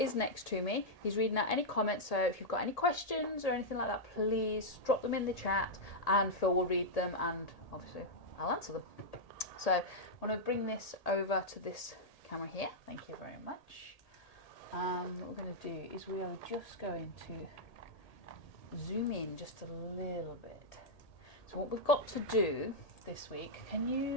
next to me. He's reading out any comments, so if you've got any questions or anything like that, please drop them in the chat and Phil will read them and obviously I'll answer them. So I want to bring this over to this camera here. Thank you very much. What we're going to do is we are just going to zoom in just a little bit. So what we've got to do this week, can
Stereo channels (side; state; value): right; late; 1.8 ms